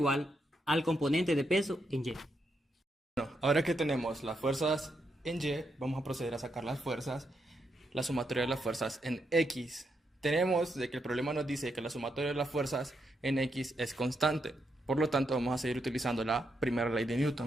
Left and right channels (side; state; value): both; normal; correlation 0.81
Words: al componente de peso en Y. Bueno, ahora que tenemos las fuerzas en Y, vamos a proceder a sacar las fuerzas, la sumatoria de las fuerzas en X. Tenemos de que el problema nos dice que la sumatoria de las fuerzas en X es constante. Por lo tanto, vamos a seguir utilizando la primera ley de